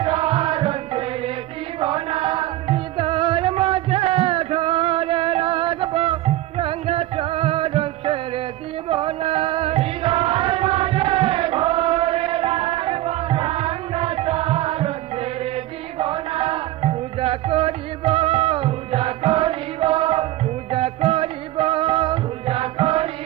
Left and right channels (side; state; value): left; quieter; 16.0 dB